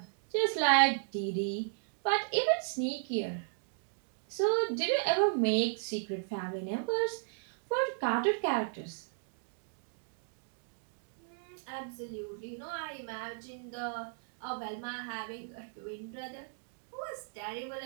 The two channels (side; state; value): left; silent; digital silence